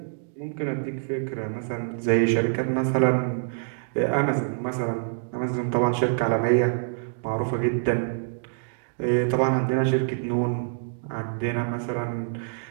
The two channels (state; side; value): silent; left; digital silence